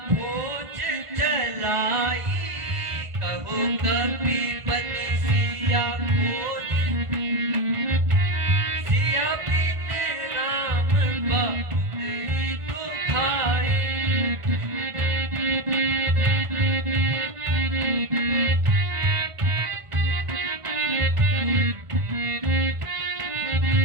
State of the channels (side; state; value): left; late; 1.5 ms